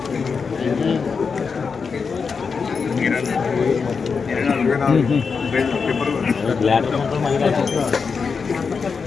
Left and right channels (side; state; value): right; quieter; 5.4 dB